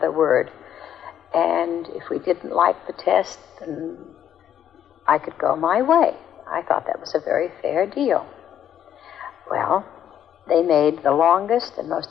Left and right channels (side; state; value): right; quieter; 10.0 dB